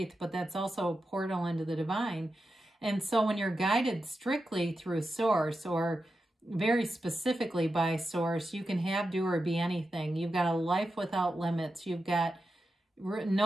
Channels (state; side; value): normal; both; correlation 0.90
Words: but that's also a portal into the divine. And so when you're guided strictly through Source, or very specifically by Source, you can have, do, or be anything. You've got a life without limits. You've got